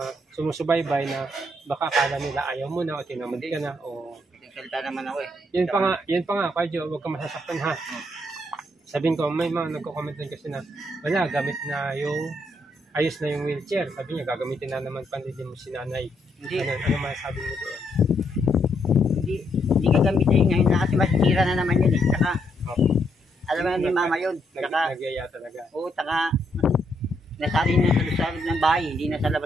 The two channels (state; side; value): normal; both; correlation 0.75